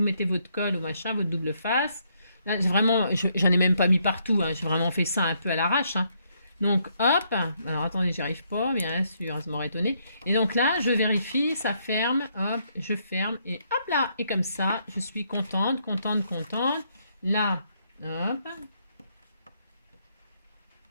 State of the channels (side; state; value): both; inverted; correlation -0.73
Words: mettez votre colle ou machin, votre double face. Là, vraiment, j'en ai même pas mis partout. Hein. J'ai vraiment fait ça un peu à l'arrache. Hein. Donc, hop. Alors, attendez, j'y arrive pas, bien sûr, ça m'aurait étonné. Et donc là, je vérifie, ça ferme. Hop, je ferme. Et hop là. Et comme ça, je suis contente, contente, contente. Là, hop.